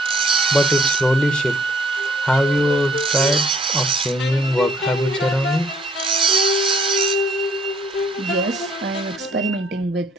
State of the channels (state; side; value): normal; both; correlation 0.62